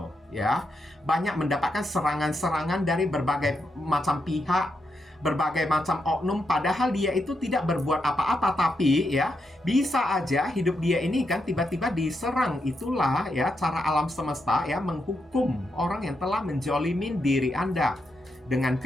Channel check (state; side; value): normal; both; correlation 0.83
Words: ya. Banyak mendapatkan serangan-serangan dari berbagai macam pihak, berbagai macam oknum, padahal dia itu tidak berbuat apa-apa, tapi ya bisa aja hidup dia ini kan tiba-tiba diserang. Itulah ya cara alam semesta ya menghukum orang yang telah menjolimin diri Anda dengan